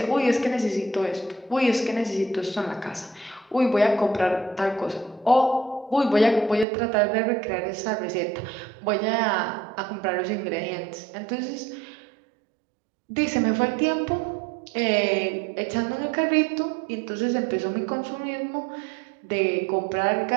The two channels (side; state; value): left; drops out; at 6.7 s